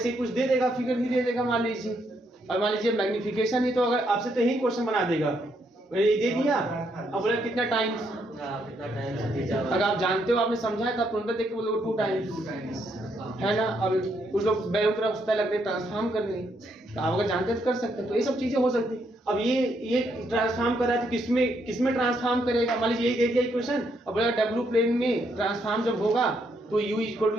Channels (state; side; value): normal; both; correlation 0.75